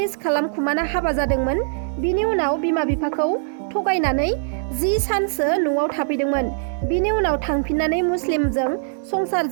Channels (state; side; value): silent; left; digital silence